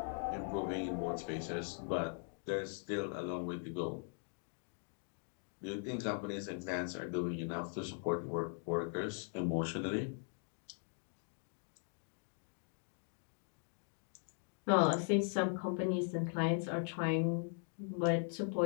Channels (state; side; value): silent; right; 51 dB below the other